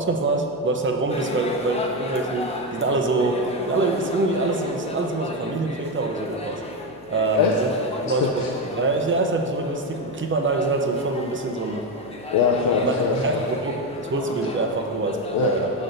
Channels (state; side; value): noise; left; hum, 29 dB below the sound